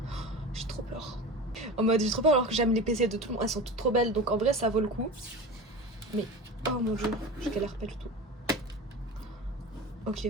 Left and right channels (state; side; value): normal; both; correlation 0.31